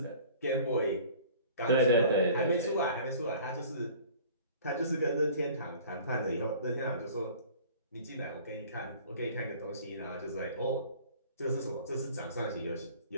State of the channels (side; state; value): both; inverted; correlation -0.47